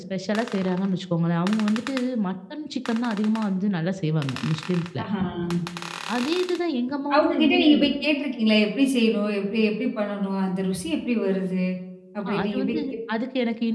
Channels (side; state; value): both; identical; correlation 1.00